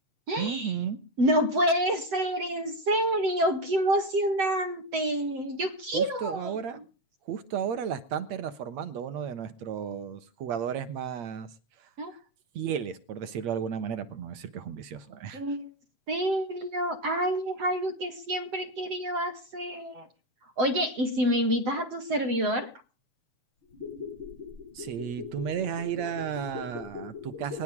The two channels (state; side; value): late; left; 7.8 ms